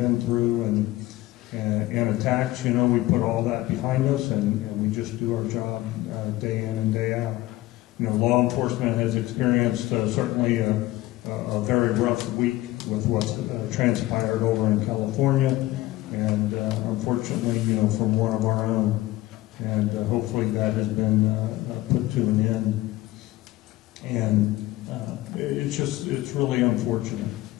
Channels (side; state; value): right; quieter; 17.2 dB